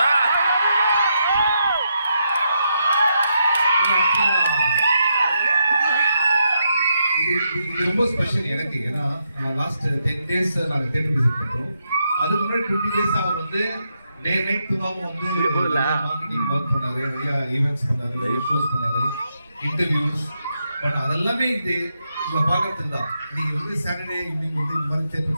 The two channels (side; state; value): both; inverted; correlation -0.81